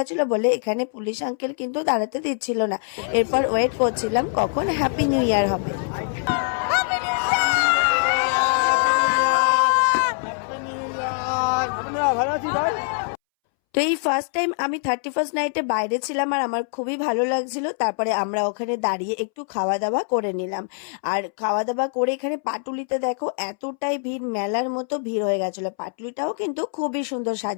বলে এখানে পুলিশ আঙ্কেল কিন্তু দাঁড়াতে দিচ্ছিল না। এরপর ওয়েট করছিলাম কখন হ্যাপি নিউ ইয়ার হবে। ভালো আছি ভাই। তো এই ফার্স্ট টাইম আমি 31 নাইটে বাইরে ছিলাম, আর আমার খুবই ভালো লাগছিল। তারপরে আমরা ওখানে দাঁড়িয়ে একটু খাওয়া দাওয়া করে নিলাম। আর খাওয়া দাওয়া করে এখানে পাটুলিতে দেখো এতটাই ভিড়, মেলার মতো ভিড় হয়ে গেছিল। পাটুলিটাও কিন্তু খুবই সুন্দর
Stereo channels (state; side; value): silent; right; 63 dB below the other